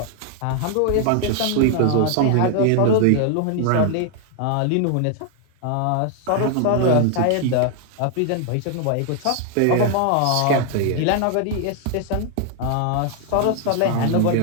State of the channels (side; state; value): both; different; correlation 0.00